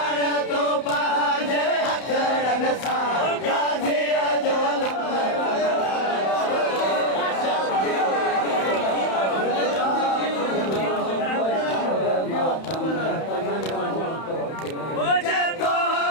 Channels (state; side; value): late; right; 31 ms